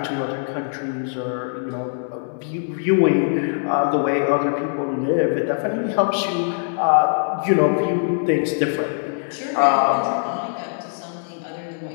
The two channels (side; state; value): right; silent; digital silence